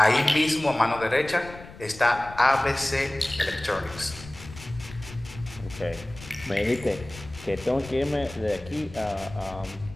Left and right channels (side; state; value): left; noise; rumble, 17 dB below the sound